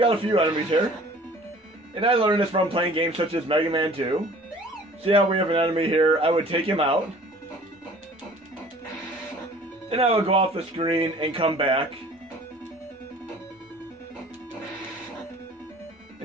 out a few enemies here. And I learned this from playing games such as Mega Man 2. See how we have an enemy here? I would take him out. Then I would go off the screen and come back.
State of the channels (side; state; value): both; normal; correlation 0.49